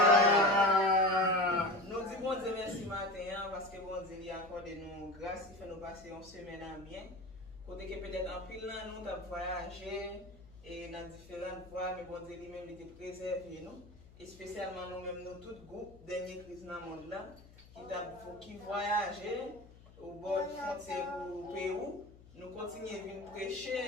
Nous disons bon Dieu merci matin parce que bon Dieu il accorde nous grâce, il fait nous passer une semaine à bien. Côté que peut-être en pile là nous avons voyagé et dans différentes voies, mais bon Dieu lui-même il était préservé nous. Et spécialement nous-mêmes, nous tout groupe dernier crise dans le monde là qui voyageait au bord de frontière au Pérou. Nous continuons à venir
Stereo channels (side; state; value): left; noise; hum, 22 dB below the sound